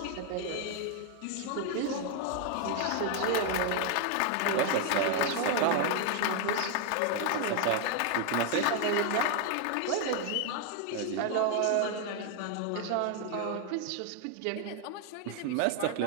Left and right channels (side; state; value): both; different; correlation 0.00